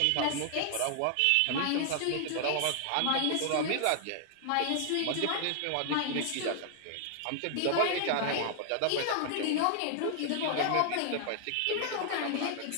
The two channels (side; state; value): both; different; correlation 0.00